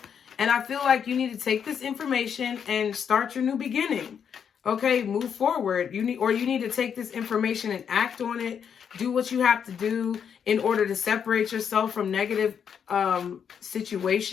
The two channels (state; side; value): quieter; right; 7.6 dB